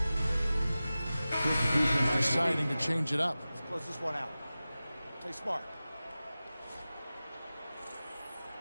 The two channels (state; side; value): inverted; both; correlation -0.96